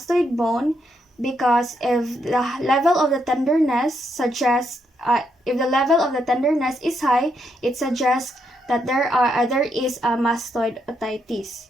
bone, because if the level of the tenderness is high, it suggests that there is a mastoid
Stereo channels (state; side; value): normal; both; correlation 0.78